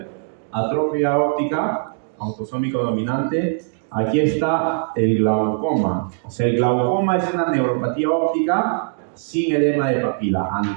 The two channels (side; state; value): left; silent; digital silence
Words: atrofia óptica, autosómico dominante. Aquí está el glaucoma. O sea, el glaucoma es una neuropatía óptica sin edema de papila,